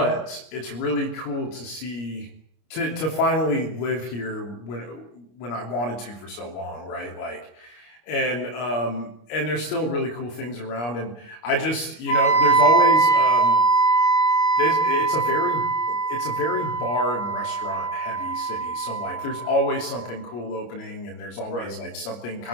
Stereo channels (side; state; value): right; late; 25 ms